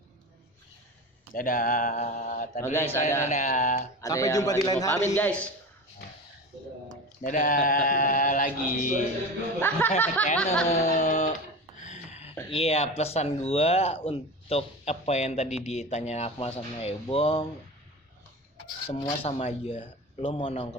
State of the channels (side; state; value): both; normal; correlation 0.29